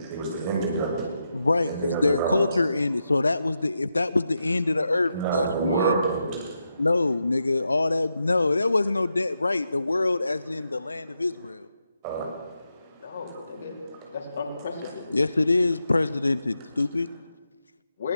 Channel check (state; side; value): inverted; both; correlation -0.85